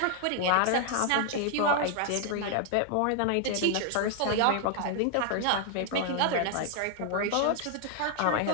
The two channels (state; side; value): different; both; correlation 0.00